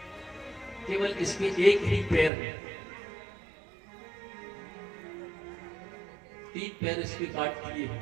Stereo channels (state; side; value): drops out; left; at 2.3 s